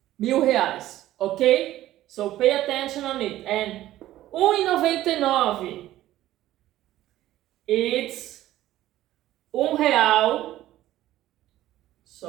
R$1,000, okay? So pay attention on it. And 1,99, it's R$1,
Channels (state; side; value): quieter; left; 14.4 dB